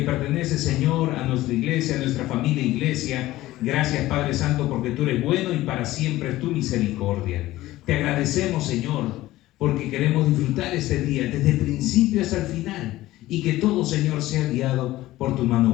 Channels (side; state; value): right; quieter; 16.5 dB